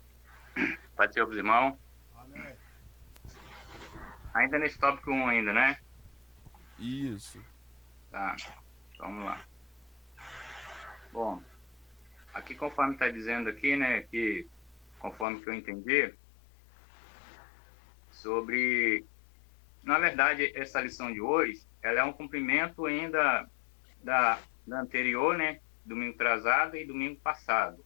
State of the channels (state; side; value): drops out; right; at 15.2 s